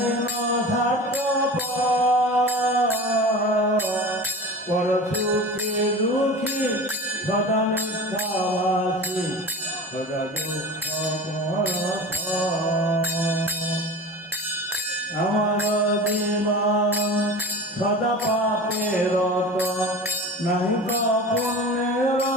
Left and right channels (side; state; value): both; normal; correlation 0.34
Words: পর সুখে দুঃখী সদা মিথ্যাবাসী, সদা দুঃখ আমার জীবন সদা পাপের রত, নাহি ক পুণ্যের